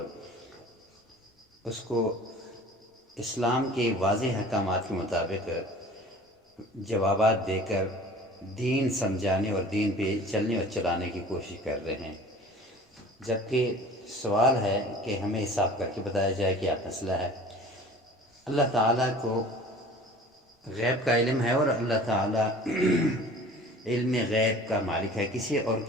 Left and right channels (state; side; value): normal; both; correlation 0.44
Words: اس کو اسلام کے واضح احکامات کے مطابق جوابات دے کر دین سمجھانے اور دین پہ چلنے اور چلانے کی کوشش کر رہے ہیں، جبکہ سوال ہے کہ ہمیں حساب کر کے بتایا جائے کہ کیا مسئلہ ہے۔ اللہ تعالیٰ کو غیب کا علم ہے اور اللہ تعالیٰ علم غیب کا مالک ہے، کسی